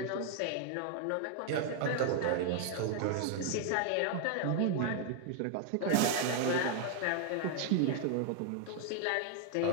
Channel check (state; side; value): different; both; correlation 0.00